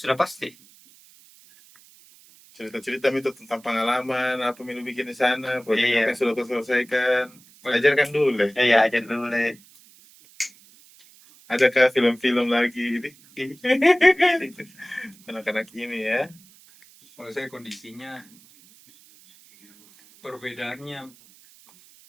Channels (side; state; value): right; noise; hiss, 26 dB below the sound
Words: pasti. Cerita-cerita itu tentang pengalaman, apa yang lu bikin di sana, proyek Iya. apa yang sudah kau selesaikan. Ajarkan dulu deh. Ya aja dulu deh. Adakah film-film lagi ini? Anak-anak ini ya. Kalau saya kondisinya perbedaannya